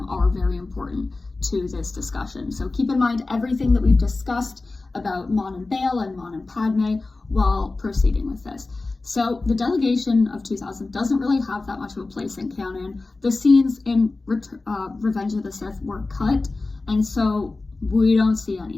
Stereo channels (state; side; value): quieter; right; 3.4 dB